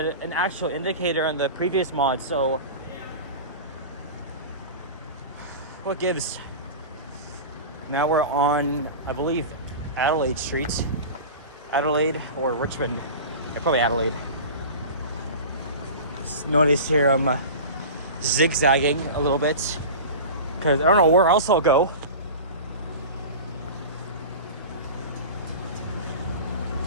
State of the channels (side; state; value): both; inverted; correlation -0.32